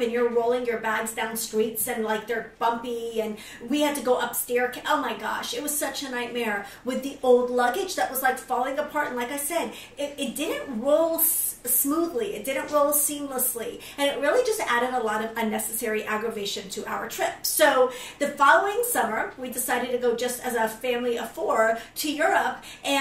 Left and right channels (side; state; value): both; identical; correlation 1.00